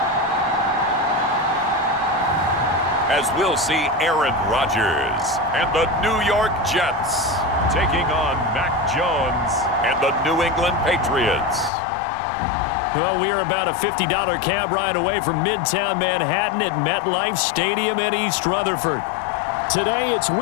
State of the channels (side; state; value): right; drops out; at 11.7 s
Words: As we'll see Aaron Rodgers and the New York Jets taking on Mac Jones and the New England Patriots. Well, we are about a $50 cab ride away from Midtown Manhattan at MetLife Stadium in East Rutherford. Today, it's